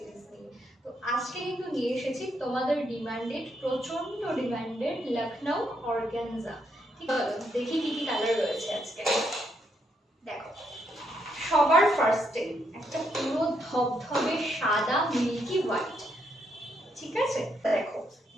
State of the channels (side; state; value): both; normal; correlation 0.77